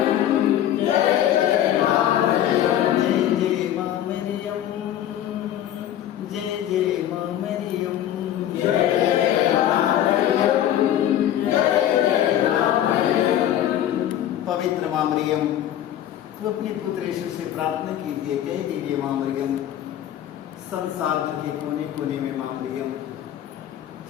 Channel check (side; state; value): right; quieter; 11.5 dB